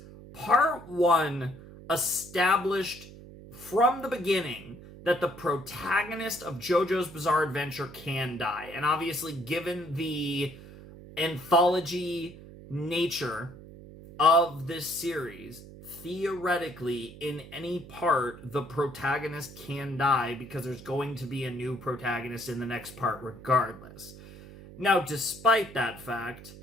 Part 1 established from the beginning that the protagonist of JoJo's Bizarre Adventure can die. And obviously, given the anthology nature of this series, theoretically, in any part, the protagonist can die because there's going to be a new protagonist in the next part regardless. Now, despite that fact,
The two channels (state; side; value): noise; right; hum, 17 dB below the sound